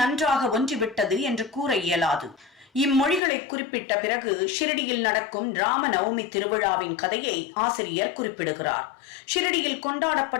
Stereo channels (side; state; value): right; drops out; at 3.2 s